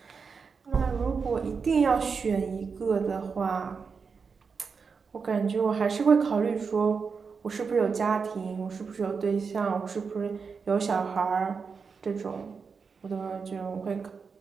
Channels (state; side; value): quieter; left; 5.4 dB